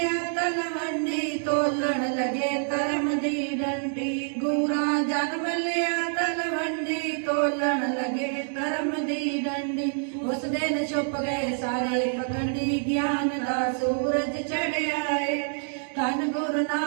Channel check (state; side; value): silent; left; digital silence